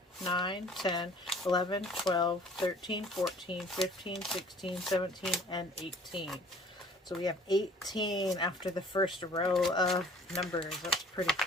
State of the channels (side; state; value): both; normal; correlation 0.52